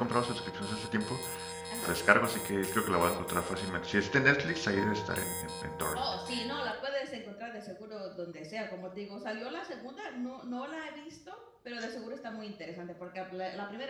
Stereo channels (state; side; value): identical; both; correlation 1.00